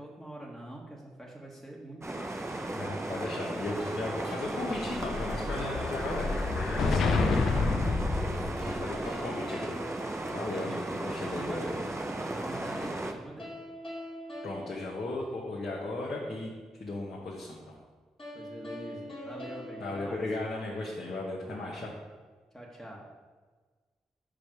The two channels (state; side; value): normal; both; correlation 0.82